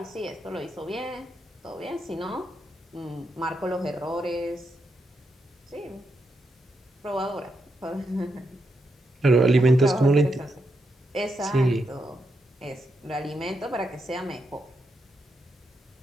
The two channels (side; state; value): both; normal; correlation 0.82